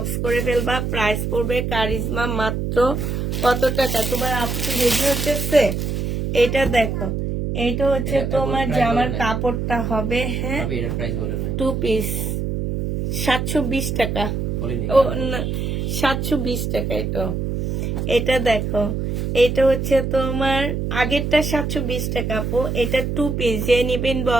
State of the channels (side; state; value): right; noise; hum, 2 dB below the sound